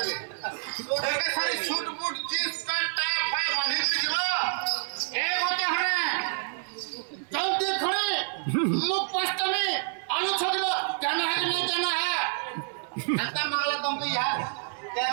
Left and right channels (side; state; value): left; silent; 58 dB below the other